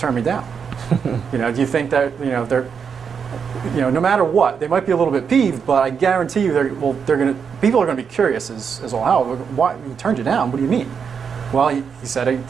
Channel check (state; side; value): quieter; left; 6.6 dB